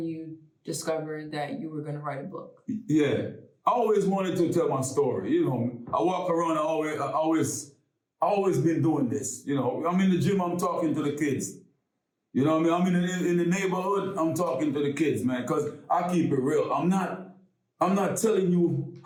you discovered that you were going to write a book. Yeah. I always wanted to tell my story. I walk around, I always been doing this. I'm in the gym, I'm talking to the kids. You know what I mean? I'm in the neighborhood, I'm talking to the kids, man, because I keep it real. I'm not telling you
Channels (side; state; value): both; identical; correlation 1.00